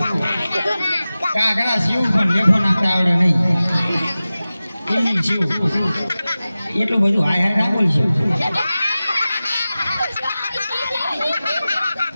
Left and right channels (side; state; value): both; inverted; correlation -0.96